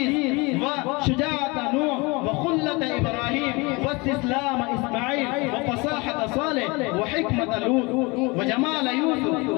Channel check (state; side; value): quieter; right; 26.3 dB